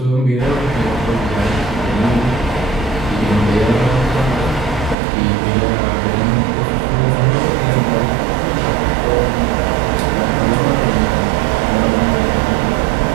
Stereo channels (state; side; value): drops out; left; at 5.0 s